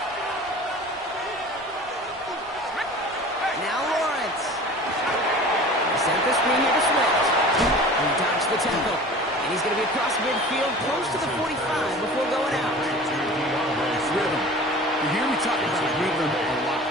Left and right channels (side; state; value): both; normal; correlation 0.40